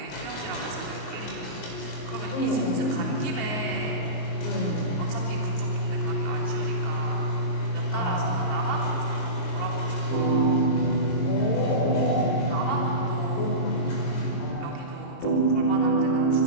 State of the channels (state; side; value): late; right; 22 ms